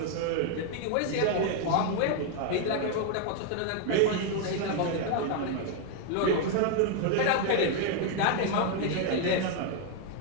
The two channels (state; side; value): different; both; correlation 0.00